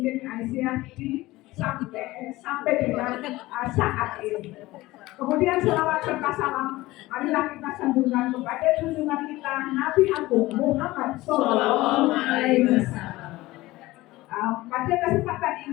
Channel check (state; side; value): quieter; right; 18.7 dB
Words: Aisyah sampai dengan saat ini. Kemudian selawat serta salam marilah kita sambungkan kepada junjungan kita Nabi Agung Muhammad Sallallahu Alaihi Wasallam. Pada kesempatan